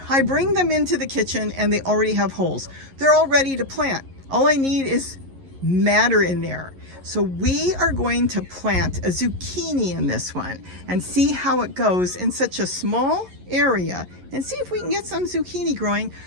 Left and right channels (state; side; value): late; left; 11 ms